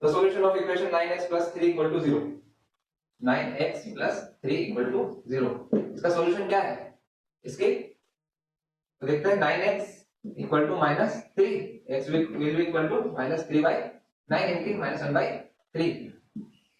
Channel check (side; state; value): both; identical; correlation 1.00